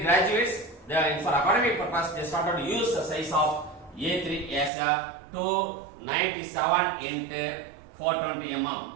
graduates, they are for academic purpose, they started to use the size of A3 as a 297 into 420 mm.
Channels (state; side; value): drops out; left; at 4.7 s